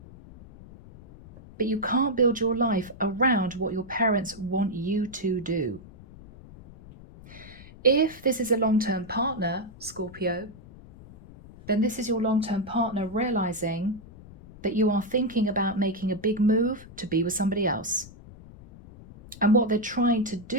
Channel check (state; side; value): noise; left; rumble, 19 dB below the sound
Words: But you can't build your life around what your parents want you to do. If this is a long-term partner, Scorpio, then this is your long-term partner realizing that you are thinking about making a big move to be with somebody else. And what they're trying to